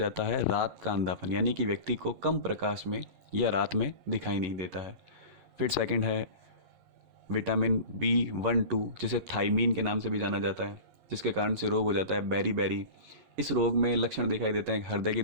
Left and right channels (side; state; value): left; late; 11 ms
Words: है रात का अंधापन, यानी कि व्यक्ति को कम प्रकाश में या रात में दिखाई नहीं देता है। फिर सेकंड है विटामिन B12, जिसे थाइमीन के नाम से भी जाना जाता है, जिसके कारण से रोग हो जाता है बेरी। इस रोग में लक्षण दिखाई देते हैं: हृदय की